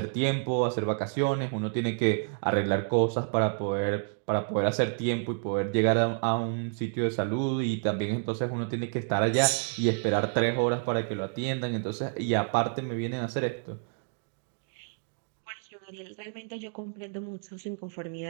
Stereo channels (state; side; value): silent; left; 58 dB below the other